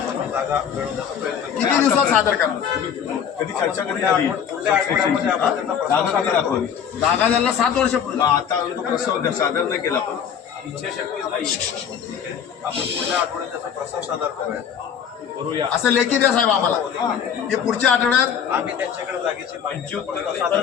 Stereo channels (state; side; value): quieter; right; 8.1 dB